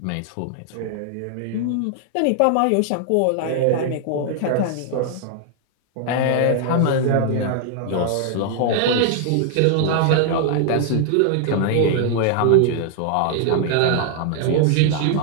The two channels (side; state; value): both; different; correlation 0.00